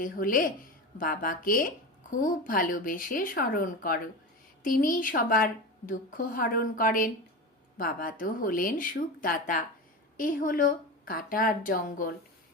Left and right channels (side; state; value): both; normal; correlation 0.25